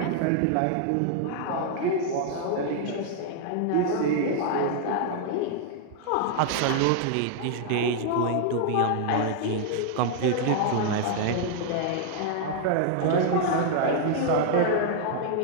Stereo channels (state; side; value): different; both; correlation 0.00